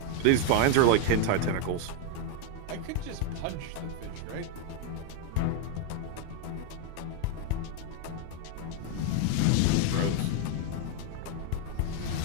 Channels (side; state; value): both; different; correlation 0.01